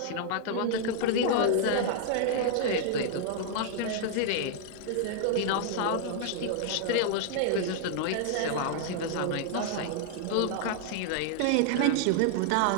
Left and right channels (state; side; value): different; both; correlation 0.00